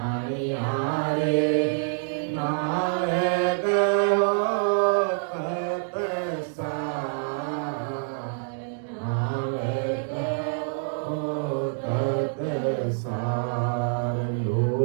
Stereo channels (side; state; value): left; silent; digital silence